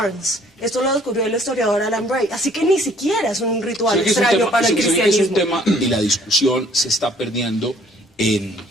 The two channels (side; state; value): both; normal; correlation 0.59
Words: Esto lo descubrió el historiador Alan Bray, así que ni siquiera es un ritual extraño para el cristianismo. Es un tema y la discusión se está perdiendo en